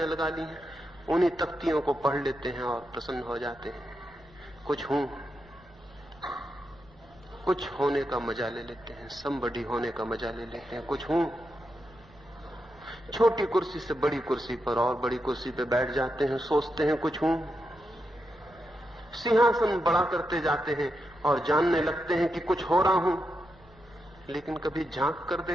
लगा ली हैं। उन्हीं तख्तियों को पढ़ लेते हैं और प्रसन्न हो जाते हैं। कुछ हूं, कुछ होने का मजा ले लेते हैं, समबडी होने का मजा ले लेते हैं। कुछ हूं, छोटी कुर्सी से बड़ी कुर्सी पर और बड़ी कुर्सी पे बैठ जाते हैं, सोचते हैं कुछ हूं। सिंहासन बड़ा करते जाते हैं और जानने लगते हैं कि कुछ हो रहा हूं। लेकिन कभी झांक कर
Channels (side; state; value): both; normal; correlation 0.85